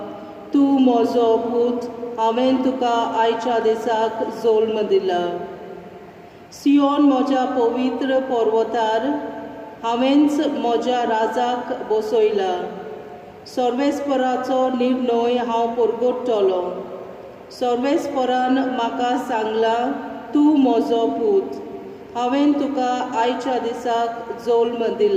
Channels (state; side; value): identical; both; correlation 1.00